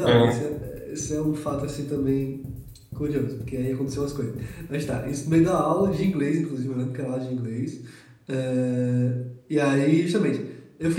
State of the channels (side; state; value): both; identical; correlation 1.00